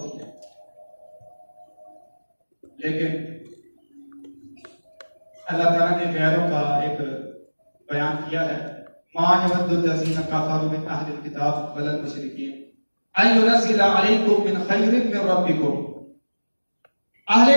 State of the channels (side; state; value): both; inverted; correlation -1.00